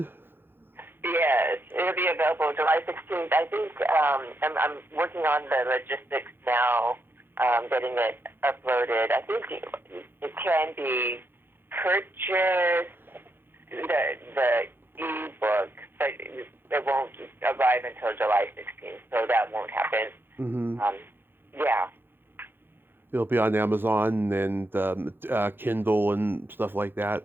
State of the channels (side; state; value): left; late; 0.10 ms